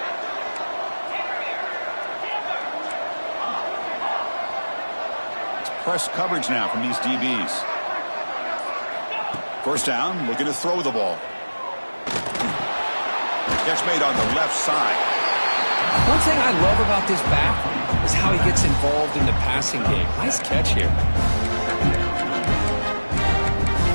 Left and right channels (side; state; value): both; inverted; correlation -1.00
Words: It's press coverage now from these DBs. First down, looking to throw the ball. Catch made on the left side. One thing I love about this back is how he gets involved in the passing game. Nice catch here.